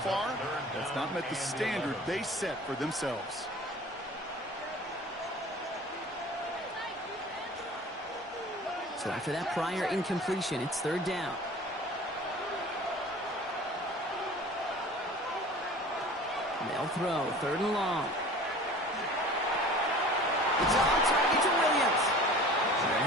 that's not met the standard they set for themselves. So after that prior incompletion, it's third down. And they'll throw third and long. It's on target to Williams.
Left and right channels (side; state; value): both; normal; correlation 0.43